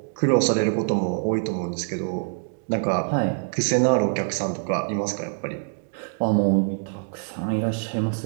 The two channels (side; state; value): left; silent; 62 dB below the other